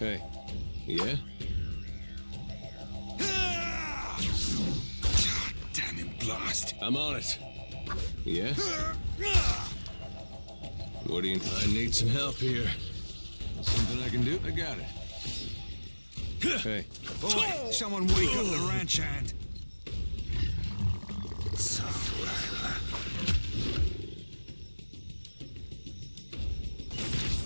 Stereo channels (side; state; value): both; inverted; correlation -1.00